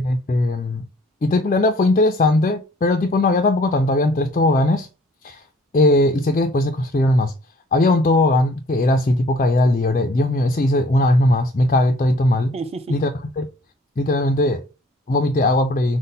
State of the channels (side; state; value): both; normal; correlation 0.55